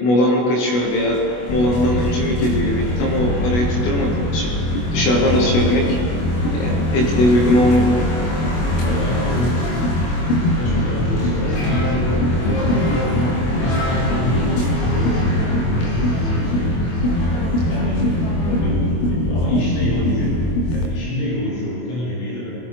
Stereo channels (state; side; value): late; right; 24 ms